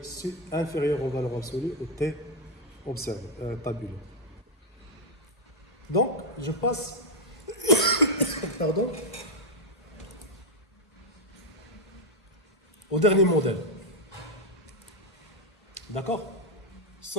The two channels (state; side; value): normal; both; correlation 0.01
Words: inférieur en valeur absolue au T observé, tabulé. Donc, je passe pardon, au dernier modèle. D'accord?